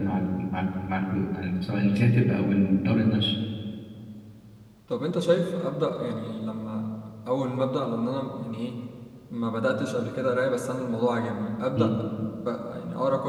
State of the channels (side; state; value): both; identical; correlation 1.00